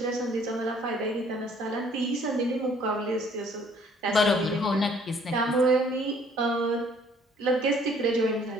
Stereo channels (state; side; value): normal; both; correlation 0.59